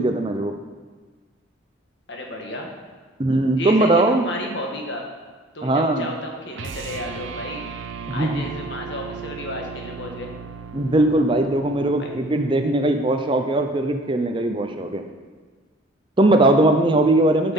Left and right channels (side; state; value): both; normal; correlation 0.52